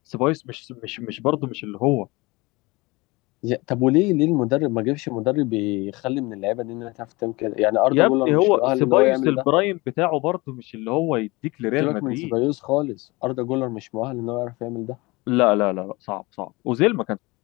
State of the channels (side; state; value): right; quieter; 23.5 dB